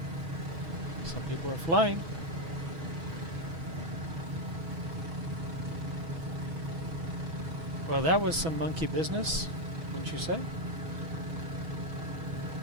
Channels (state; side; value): late; left; 6.1 ms